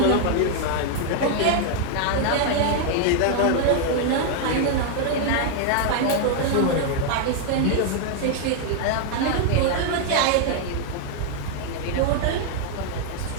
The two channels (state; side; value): different; both; correlation 0.00